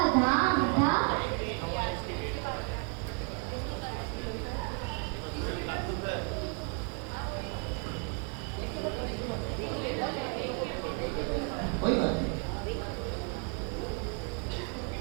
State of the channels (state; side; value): quieter; left; 36.5 dB